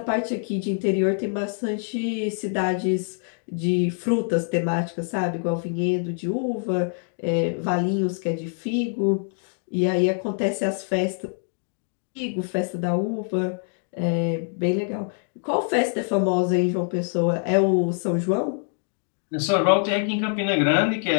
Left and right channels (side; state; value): right; silent; 60 dB below the other